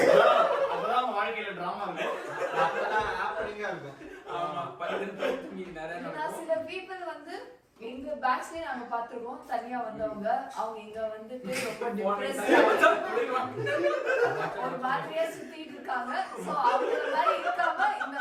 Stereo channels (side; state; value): both; identical; correlation 1.00